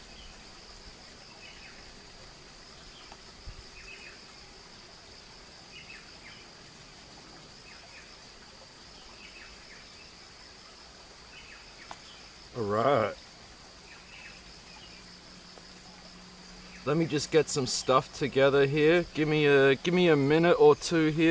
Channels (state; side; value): identical; both; correlation 1.00